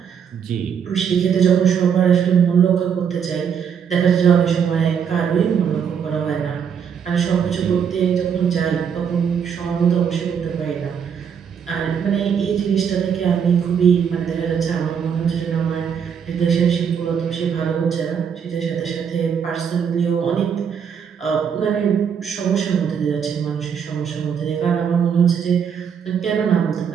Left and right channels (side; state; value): left; quieter; 7.4 dB